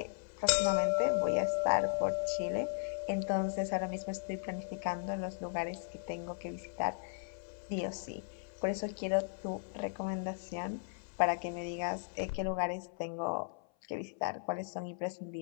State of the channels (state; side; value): silent; right; 53 dB below the other